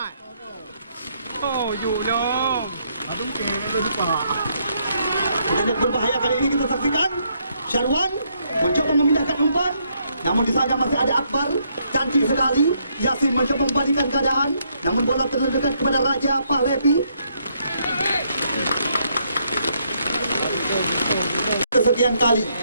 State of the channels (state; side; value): inverted; both; correlation -0.73